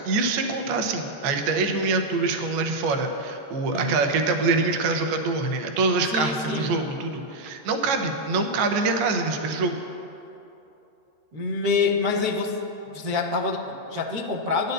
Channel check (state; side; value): late; left; 14 ms